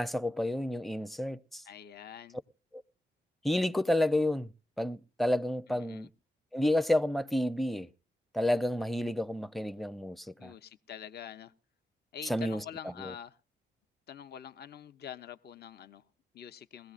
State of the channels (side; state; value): both; normal; correlation 0.93